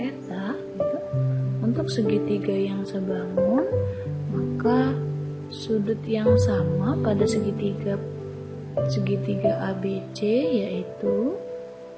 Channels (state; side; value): identical; both; correlation 1.00